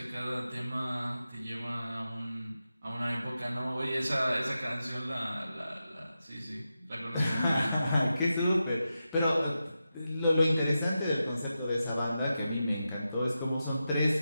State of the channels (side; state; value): both; inverted; correlation -0.90